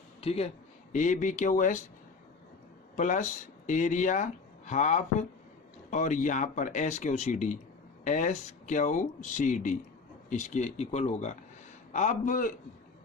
ठीक है, ABQS प्लस एरिया हाफ और यहाँ पर SQCD इसके इक्वल होगा। अब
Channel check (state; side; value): quieter; right; 4.5 dB